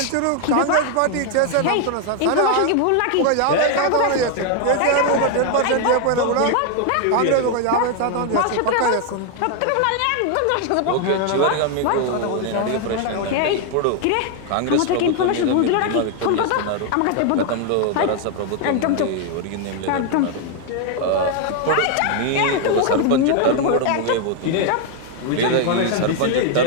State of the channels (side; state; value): both; different; correlation 0.00